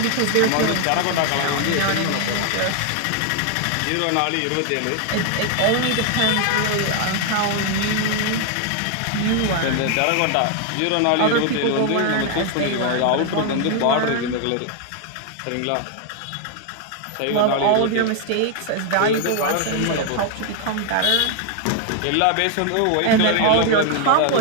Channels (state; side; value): different; both; correlation 0.00